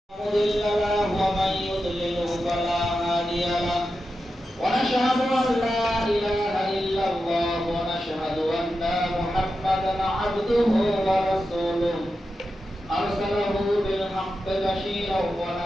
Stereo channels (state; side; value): normal; both; correlation 0.90